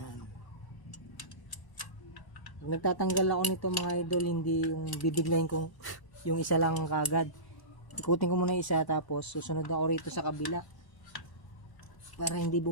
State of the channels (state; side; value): late; right; 1.0 ms